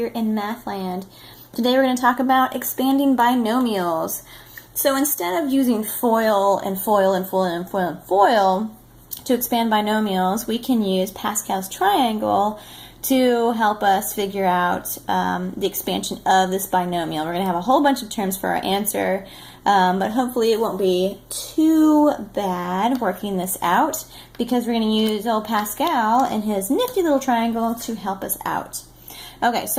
in Mathland. Today we're going to talk about expanding binomials. So instead of using FOIL and FOIL and FOIL and FOIL and FOIL to expand binomials, we can use Pascal's triangle to help us figure out the expansion of this binomial. We're going to have a whole bunch of terms for our answer, but hopefully it won't be too bad working this out because we're going to use old Pascal and his nifty little triangle to help us out. Okay,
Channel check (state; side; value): identical; both; correlation 1.00